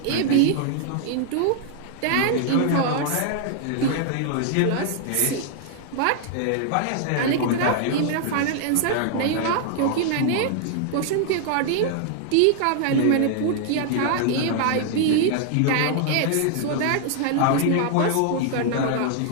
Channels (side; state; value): both; different; correlation 0.00